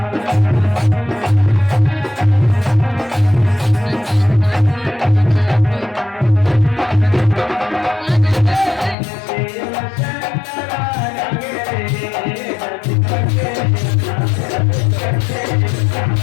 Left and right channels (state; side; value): drops out; right; at 9.0 s